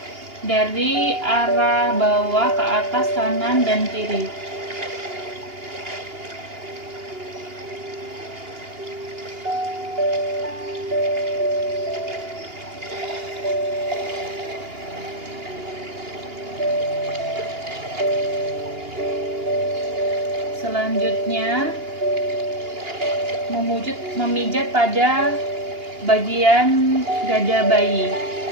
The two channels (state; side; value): late; left; 2.8 ms